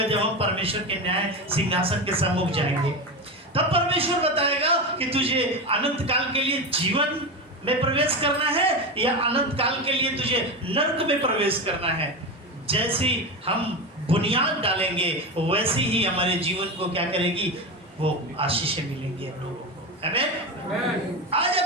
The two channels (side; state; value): both; normal; correlation 0.19